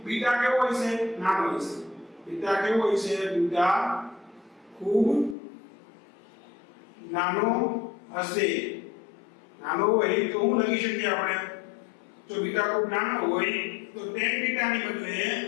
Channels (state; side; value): drops out; right; at 5.4 s